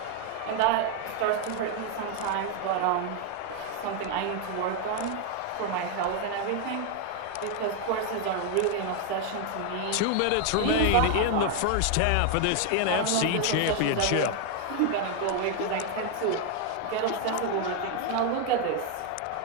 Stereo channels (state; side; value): different; both; correlation 0.01